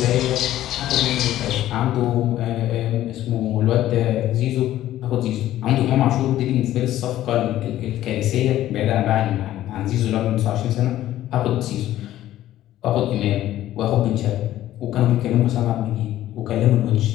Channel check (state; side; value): quieter; right; 13.6 dB